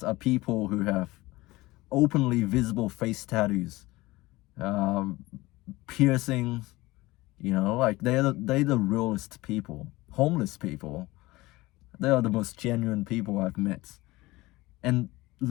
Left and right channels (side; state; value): right; quieter; 20.0 dB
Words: are people who have openly visible face tattoos, piercings, they're the realest people. Homeless people, they are the most genuine people I've met. And